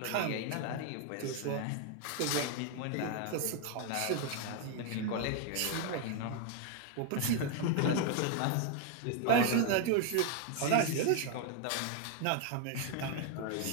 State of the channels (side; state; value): both; different; correlation 0.01